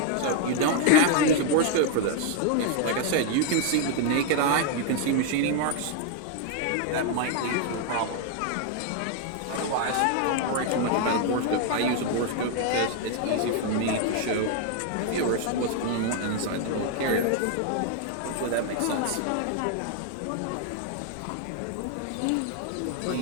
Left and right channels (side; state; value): both; different; correlation 0.00